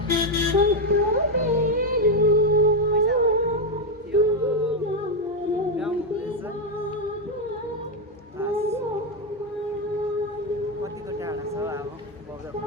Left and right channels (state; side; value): normal; both; correlation 0.05